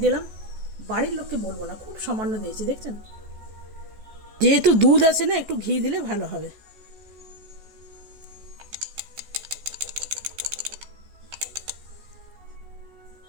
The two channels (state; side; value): late; left; 14 ms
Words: দিলাম। বাড়ির লোককে বলবো না, খুব সামান্য দিয়েছি, দেখছেন। যেহেতু দুধ আছে না, একটু ঘি দিলে ভালো হবে।